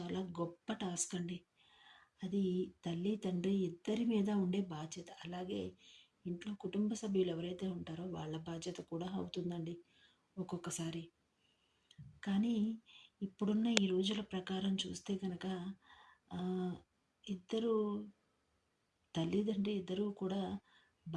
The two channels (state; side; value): identical; both; correlation 1.00